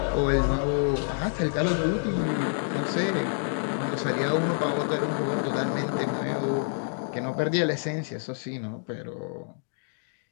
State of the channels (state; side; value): silent; right; digital silence